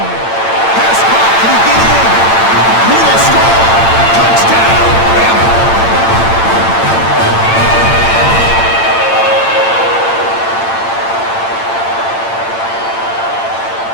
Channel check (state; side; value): late; right; 8.9 ms